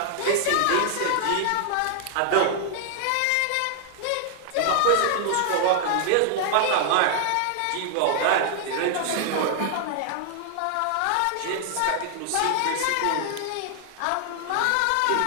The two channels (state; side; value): different; both; correlation 0.00